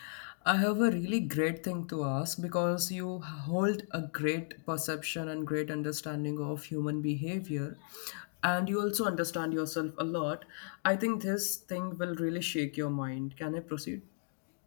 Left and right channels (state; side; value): silent; right; digital silence